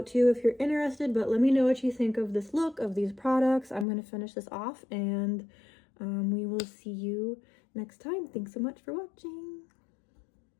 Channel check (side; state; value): right; drops out; at 3.9 s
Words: too if you're interested. But let me know what you think of this look, of these products. I'm going to finish this off and we will see you next time. Thanks so much for watching.